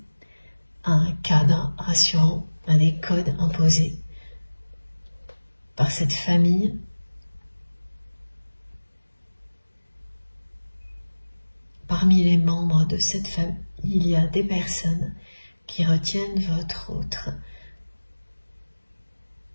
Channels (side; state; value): both; inverted; correlation -1.00